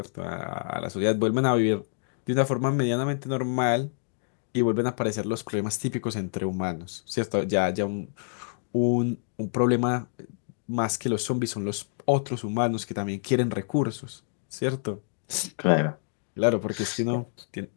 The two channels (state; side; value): silent; right; digital silence